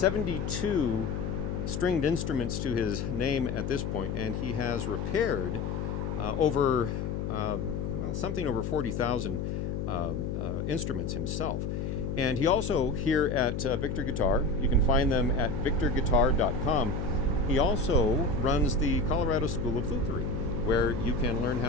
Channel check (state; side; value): noise; left; hum, 2 dB below the sound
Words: stringed instruments to his name at this point, and he has repaired something over 40,000 instruments himself. And he also, here at Victor Guitar, you can find them at victorguitar.com. He also runs the Colorado School of Lutherie, where you can learn